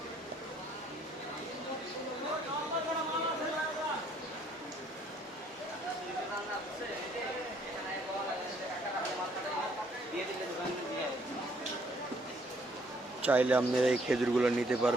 চাইলে আপনারা এই খেজুরগুলো নিতে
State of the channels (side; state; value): both; normal; correlation 0.65